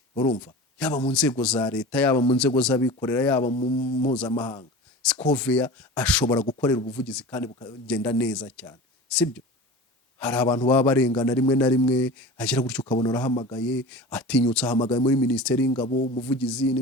urumva, yaba mu nzego za leta, yaba mu nzego z'abikorera, yaba mu mpuzamahanga, Scovia ashobora gukorera ubuvugizi kandi bukagenda neza cyane, sibyo? Hari abantu baba barengana rimwe na rimwe, agira gutyo ukabona arahamagaye, atinyutse ahamagaye muri Minisiteri y'Ingabo, umuvugizi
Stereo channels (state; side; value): normal; both; correlation 0.34